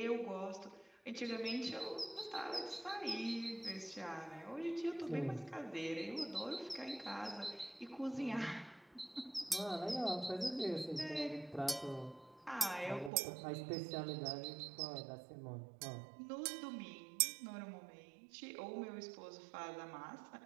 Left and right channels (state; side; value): drops out; left; at 13.1 s